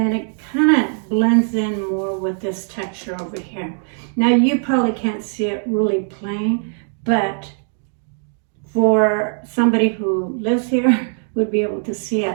it kind of blends in more with this texture over here. Now you probably can't see it really plain, but for somebody who lives here would be able to see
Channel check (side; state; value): left; silent; 59 dB below the other